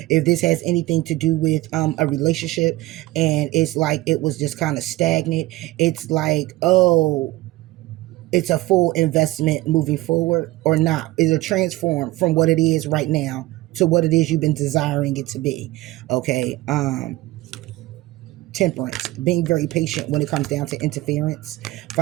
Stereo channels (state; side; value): quieter; left; 18.7 dB